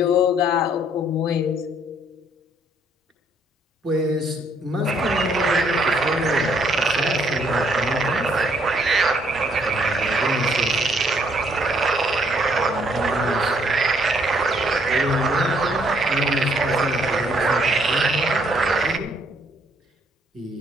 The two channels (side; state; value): both; normal; correlation 0.67